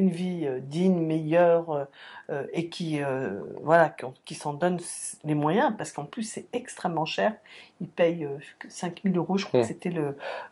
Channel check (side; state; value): both; identical; correlation 1.00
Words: vie digne, meilleure, et qui s'en donnent les moyens, parce qu'en plus c'est extrêmement cher. Ils payent 5 000 €, je crois que c'était